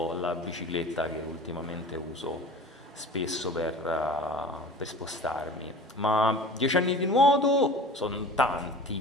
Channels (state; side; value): normal; both; correlation 0.40